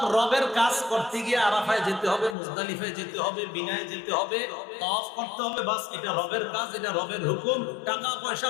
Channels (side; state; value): right; drops out; at 2.4 s